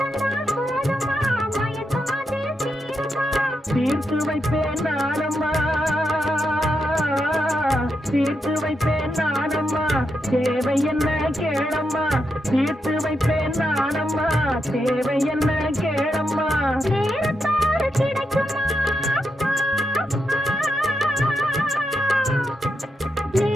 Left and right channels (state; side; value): normal; both; correlation 0.84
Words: போதுமா, மயக்கம் அது தீருமா? தீர்த்து வைப்பேன் நானம்மா, தீர்த்து வைப்பேன் நானம்மா, தேவை என்ன கேளம்மா? தீர்த்து வைப்பேன் நானம்மா, தேவை என்ன கேளம்மா? நேரத்தோடு கிடைக்குமா?